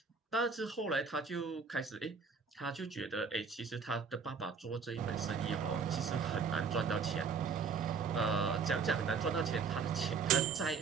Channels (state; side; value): quieter; left; 5.5 dB